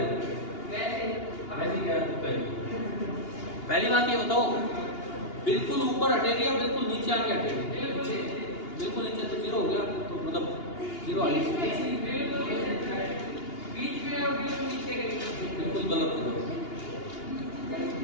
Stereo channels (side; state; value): right; late; 2.8 ms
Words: पहली बात ये बताओ, बिल्कुल ऊपर हटेगी या बिल्कुल नीचे आके हटेगी? बिल्कुल नीचे तो जीरो हो गया, तो मतलब जीरो आ गया। बिल्कुल गलत है।